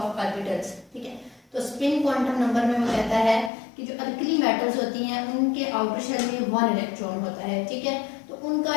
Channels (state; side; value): drops out; right; at 3.5 s